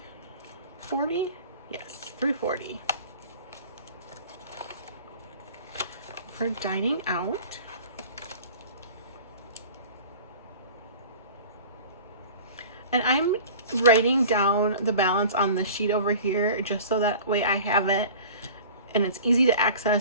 Yes, 340. For dining out. And I'm writing down the balance on the sheet over here just so that way I have it and it's easy to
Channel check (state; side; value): inverted; both; correlation -0.42